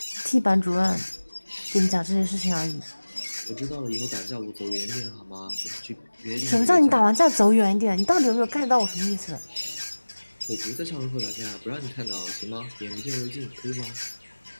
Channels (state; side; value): inverted; both; correlation -1.00